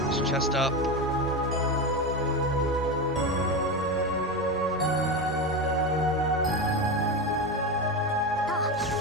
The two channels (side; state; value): both; normal; correlation 0.17